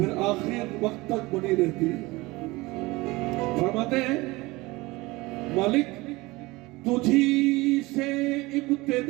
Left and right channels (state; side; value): quieter; left; 21.9 dB